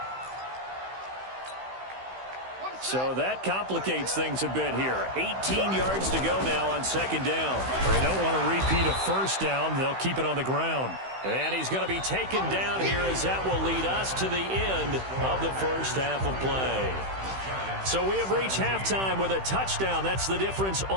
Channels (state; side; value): late; left; 16 ms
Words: So that complicates things a bit here. 18 yards to go now on second down. They don't want to repeat a first down. They'll keep it on the ground. And he's going to be taken down here as that will lead us to the end of the first half of play. So we have reached halftime with a touchdown. That's the difference